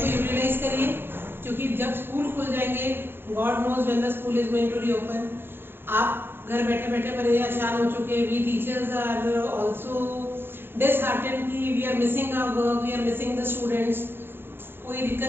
को यूटिलाइज करिए क्योंकि जब स्कूल खुल जाएंगे, God knows when the school is going to reopen. आप घर बैठे बैठे परेशान हो चुके. We teachers are also disheartened कि we are missing our work, we are missing the students. कोई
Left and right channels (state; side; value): late; left; 0.10 ms